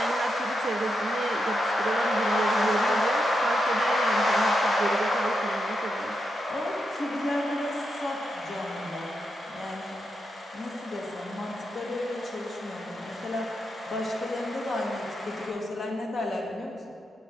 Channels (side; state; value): both; normal; correlation 0.85